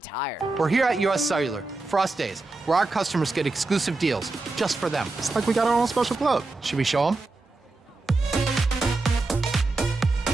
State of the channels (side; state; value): left; quieter; 3.4 dB